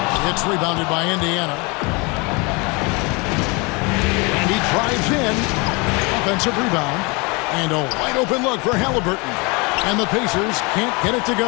It's rebounded by Indiana. And he drives in. Offensive rebound. And a wide open look for Halliburton. And the Pacers can't get it to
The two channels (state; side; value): quieter; right; 28.2 dB